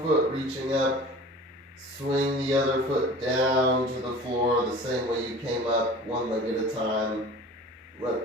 foot reaching up, swing the other foot down to the floor the same way you came up, one leg at a time.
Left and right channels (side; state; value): both; normal; correlation 0.42